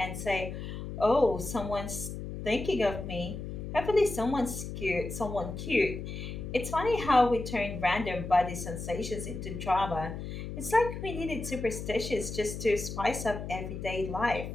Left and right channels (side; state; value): left; noise; hum, 7 dB below the sound